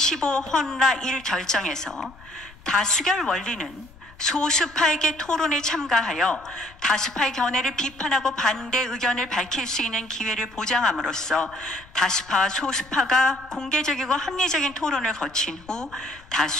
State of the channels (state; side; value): noise; left; rumble, 23 dB below the sound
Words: 헌라 1 결정에서 다수결 원리는 소수파에게 토론에 참가하여 다수파의 견해를 비판하고 반대 의견을 밝힐 수 있는 기회를 보장함으로써 다수파와 소수파가 공개적이고 합리적인 토론을 거친 후